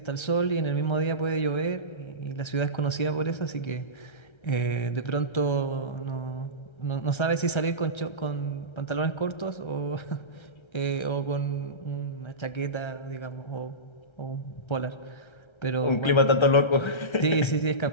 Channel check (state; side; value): late; right; 1.3 ms